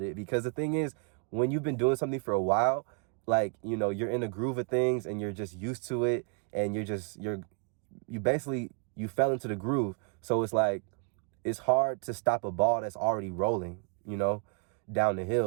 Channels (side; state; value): left; quieter; 39.5 dB